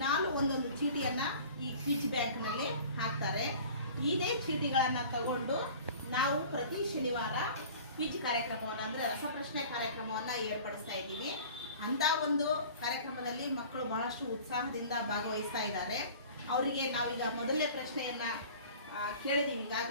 ಒಂದೊಂದು ಚೀಟಿಯನ್ನು ಈ ಕ್ವಿಜ್ ಬ್ಯಾಂಕ್ನಲ್ಲಿ ಹಾಕ್ತಾರೆ. ಇದೇ ಚೀಟಿಗಳನ್ನು ತಗೊಂಡು ನಾವು ಪ್ರತಿ ಶನಿವಾರ ಕ್ವಿಜ್ ಕಾರ್ಯಕ್ರಮವನ್ನು ಅಂದರೆ ರಸಪ್ರಶ್ನೆ ಕಾರ್ಯಕ್ರಮವನ್ನು ಏರ್ಪಡಿಸ್ತಾ ಇದ್ದೀವಿ. ಅಂಥ ಒಂದು ಕಾರ್ಯಕ್ರಮದಲ್ಲಿ ಮಕ್ಕಳು ಬಹಳಷ್ಟು ಉತ್ಸಾಹದಿಂದ ಭಾಗವಹಿಸ್ತಾ ಇದ್ದಾರೆ. ಅವರಿಗೆ ನಾವೀಗ ಮೊದಲನೇ ಪ್ರಶ್ನೆಯನ್ನು ಕೇಳಿದ್ದೀವಿ.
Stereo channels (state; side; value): inverted; both; correlation -0.44